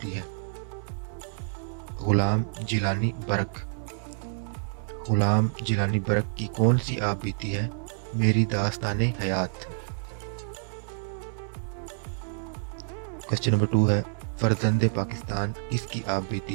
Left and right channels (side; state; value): left; silent; 59 dB below the other